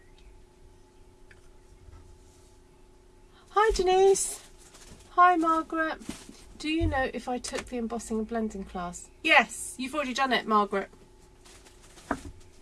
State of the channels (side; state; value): both; identical; correlation 1.00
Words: Hi Denise. Hi Margaret. Do you know if I took the embossing and blending class? Yes, you've already done it, Margaret.